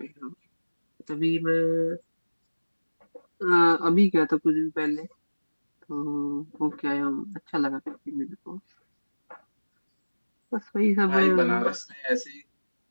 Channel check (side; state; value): both; inverted; correlation -1.00